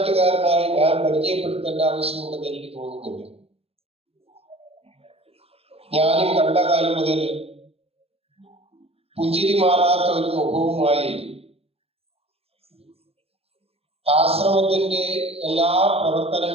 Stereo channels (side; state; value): left; late; 0.29 ms